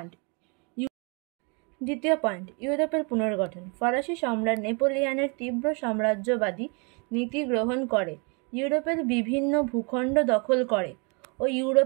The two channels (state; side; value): quieter; left; 33.8 dB